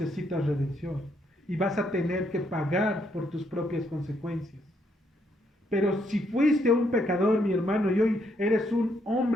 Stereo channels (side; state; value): both; normal; correlation 0.74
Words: redención. Y vas a tener que pagar por tus propias consecuencias. Pero si fuiste un pecador, mi hermano, y hoy eres un